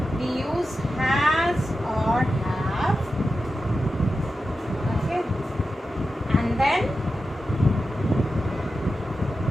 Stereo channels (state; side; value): normal; both; correlation 0.91